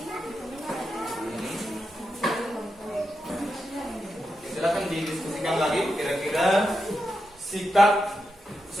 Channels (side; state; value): both; normal; correlation 0.87